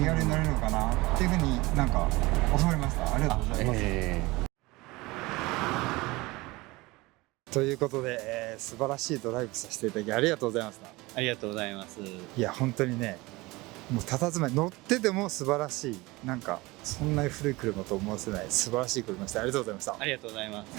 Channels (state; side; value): quieter; left; 22.0 dB